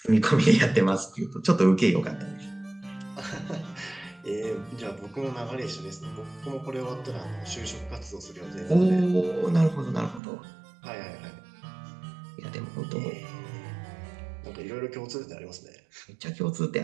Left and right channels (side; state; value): left; drops out; at 10.2 s